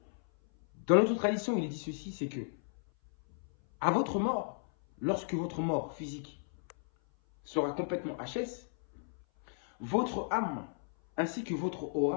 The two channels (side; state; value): right; silent; 55 dB below the other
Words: Dans notre tradition, il est dit ceci, c'est que à votre mort, lorsque votre mort physique sera complètement HS, votre âme ainsi que votre